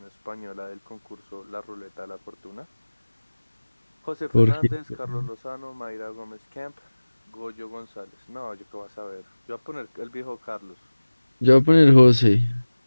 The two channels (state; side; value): inverted; both; correlation -1.00